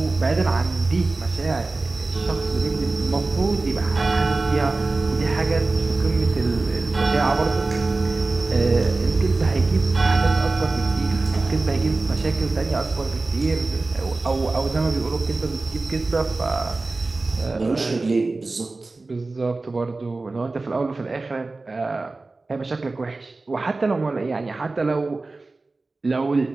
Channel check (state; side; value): quieter; left; 3.4 dB